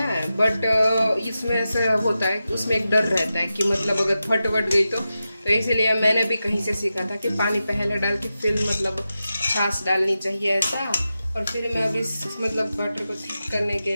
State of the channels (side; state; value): both; inverted; correlation -0.91